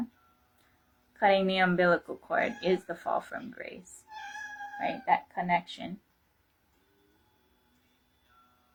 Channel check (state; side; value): identical; both; correlation 1.00